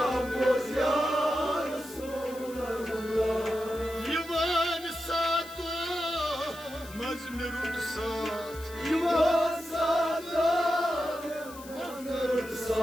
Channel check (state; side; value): noise; left; hiss, 18 dB below the sound